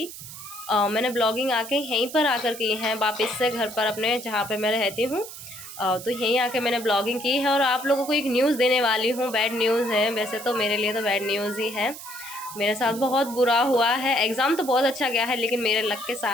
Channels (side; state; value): right; noise; hiss, 13 dB below the sound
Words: मैंने ब्लॉगिंग आके यहीं पर आकर की है, वापस से घर पर अपने जहाँ पर मैं रहती हूँ। तो यहीं आके मैंने ब्लॉगिंग की है और आप लोगों को एक न्यूज़ देने वाली हूँ। बैड न्यूज़ है, वैसे तो मेरे लिए तो बैड न्यूज़ ही है। मेरे साथ बहुत बुरा हुआ है। एग्ज़ाम तो बहुत अच्छा गया है, लेकिन मेरे लक के